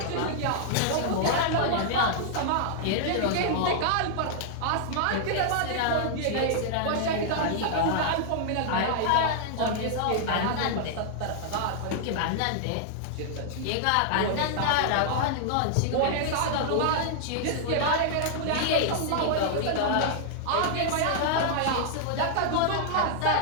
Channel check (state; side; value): different; both; correlation -0.01